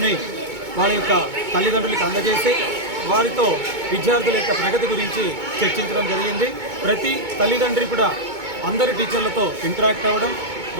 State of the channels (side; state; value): left; late; 2.2 ms